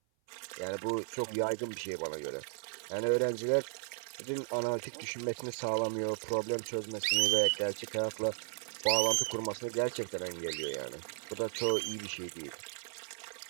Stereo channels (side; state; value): left; silent; 54 dB below the other